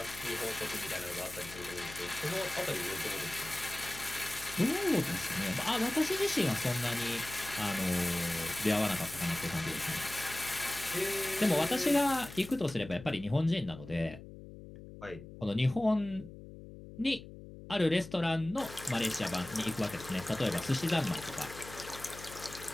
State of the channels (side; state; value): left; noise; hum, 15 dB below the sound